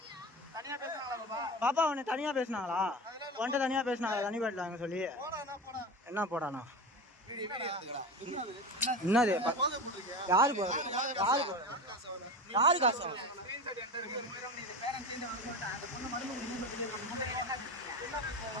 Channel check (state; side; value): normal; both; correlation 0.27